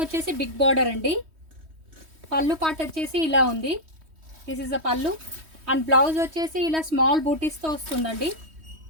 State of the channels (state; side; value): late; left; 3.2 ms